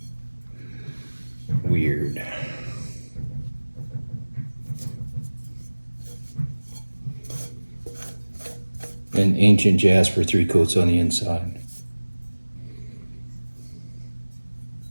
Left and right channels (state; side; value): inverted; both; correlation -1.00